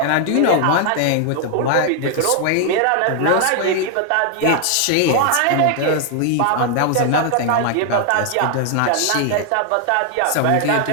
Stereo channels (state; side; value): different; both; correlation 0.00